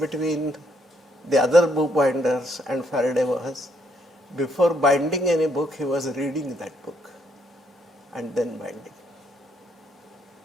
the other bookbinders and Faraday was, before binding any book, he was reading that book and then binding.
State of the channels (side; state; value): both; normal; correlation 0.72